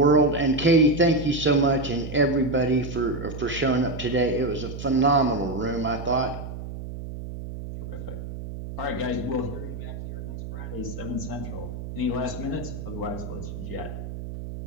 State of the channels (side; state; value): right; noise; hum, 9 dB below the sound